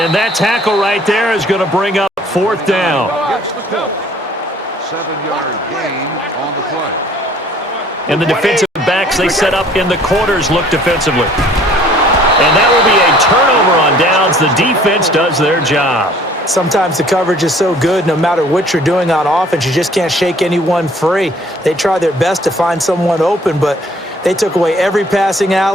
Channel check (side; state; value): both; normal; correlation 0.55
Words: that tackle right there is going to bring up fourth down. Gets the call. 7-yard gain on the play. And the defensive backs they set up in the quarters look defensively. And that will be a turnover on downs. The defense does their job. Sometimes the coverage is so good, no matter what you're doing on offense, you just can't shake anyone free. They try their best to find someone open, but they took away every passing